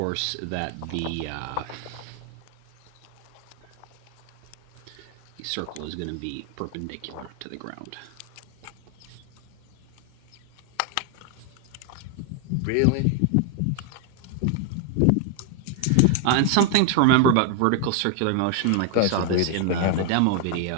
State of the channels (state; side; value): different; both; correlation 0.00